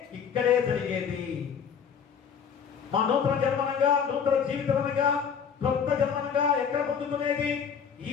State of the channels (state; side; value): quieter; right; 7.0 dB